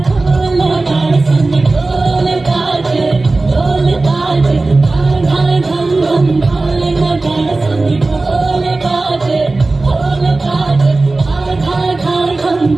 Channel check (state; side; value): quieter; left; 3.3 dB